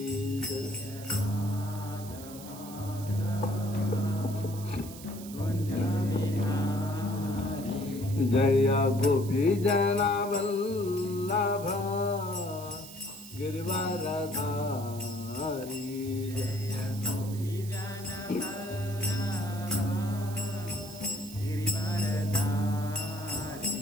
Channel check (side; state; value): right; noise; hiss, 15 dB below the sound